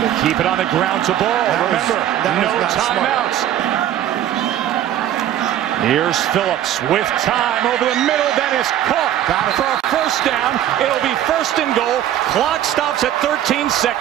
Keep it on the ground to Ball. Remember, no timeouts. Here's Phillips with time over the middle. Then is caught for a 1st down. It'll be 1st and goal. Clock stops at 13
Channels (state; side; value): quieter; left; 11.6 dB